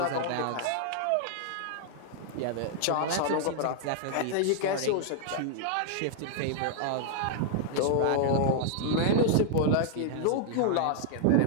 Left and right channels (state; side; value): different; both; correlation -0.01